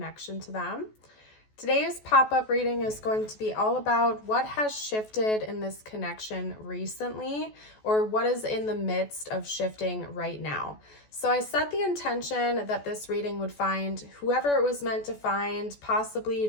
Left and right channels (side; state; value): right; late; 14 ms